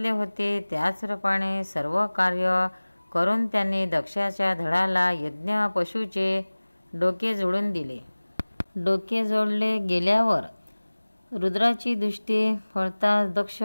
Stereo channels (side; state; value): both; inverted; correlation -1.00